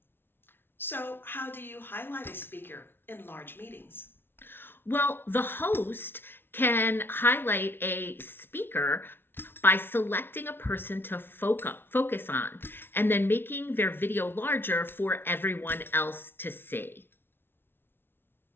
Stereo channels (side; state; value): right; late; 0.11 ms